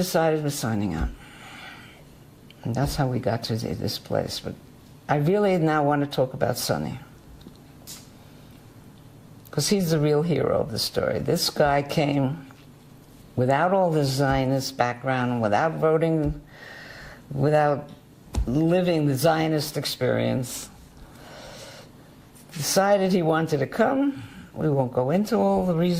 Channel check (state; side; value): identical; both; correlation 1.00